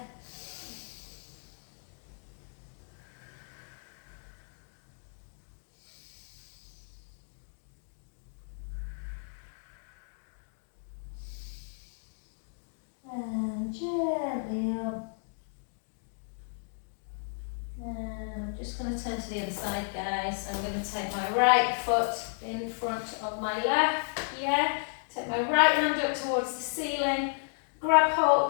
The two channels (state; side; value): silent; right; digital silence